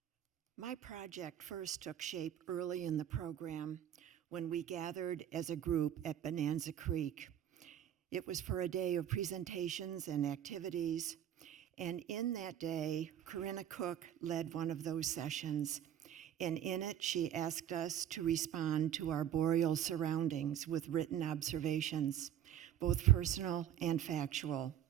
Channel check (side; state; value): left; quieter; 10.6 dB